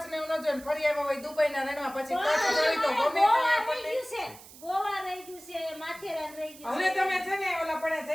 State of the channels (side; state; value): right; noise; hiss, 19 dB below the sound